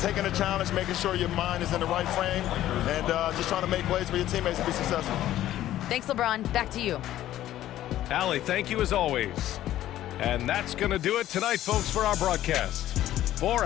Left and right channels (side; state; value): right; quieter; 13.3 dB